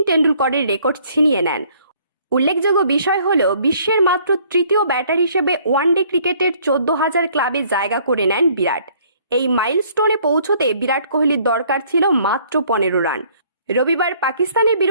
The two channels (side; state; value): both; inverted; correlation -0.60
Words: টেন্ডুলকরের রেকর্ড ছিনিয়ে নেন। উল্লেখযোগ্য বিষয় হল বিশ্বের মাত্র তৃতীয় ব্যাটার হিসেবে ওয়ানডে ক্রিকেটের 14,000 ক্লাবে জায়গা করে নেন বিরাট। এই মাইলস্টোনে পৌঁছতে বিরাট কোহলির দরকার ছিল মাত্র 15 রান। রবিবার পাকিস্তানের